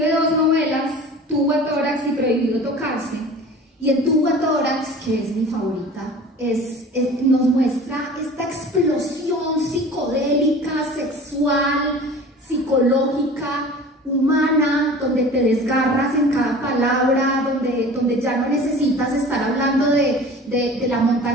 2 novelas, Tubo-Tórax y Prohibido Tocarse. Y en Tubo-Tórax, que es mi favorita, nos muestra esta explosión psicodélica, sexual, psicológica, humana, donde te desgarras en cada palabra, donde ya no necesitas estar hablando de la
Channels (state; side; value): normal; both; correlation 0.41